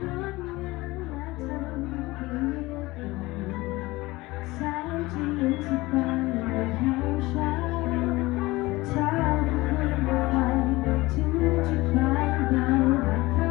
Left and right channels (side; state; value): right; quieter; 20.5 dB